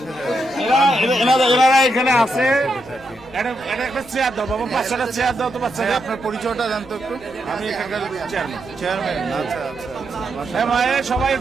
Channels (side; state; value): right; noise; rumble, 27 dB below the sound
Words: এনারা এখানে আছে। একটা চেয়ার দাও বাবা, 5টা চেয়ার দাও তো বাচ্চাদের। আপনার পরিচয়টা জানতো একটু? আমি এখানকার চেয়ারম্যান। আচ্ছা আচ্ছা। মায়ের সবাই